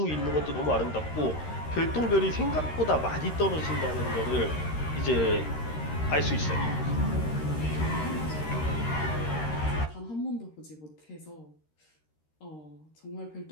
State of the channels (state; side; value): late; right; 13 ms